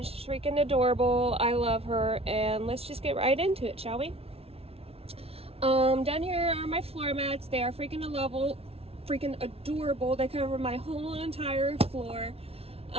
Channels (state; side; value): late; left; 0.29 ms